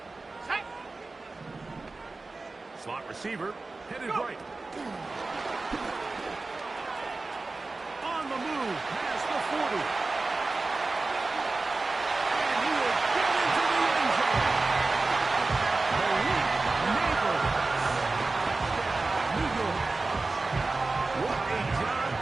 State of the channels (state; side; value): quieter; left; 3.5 dB